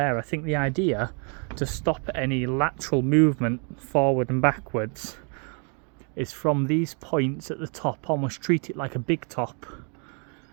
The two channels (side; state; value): left; quieter; 38.2 dB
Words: I think the idea to stop any lateral movement forward and backwards is from these points at the top, almost treat it like a big top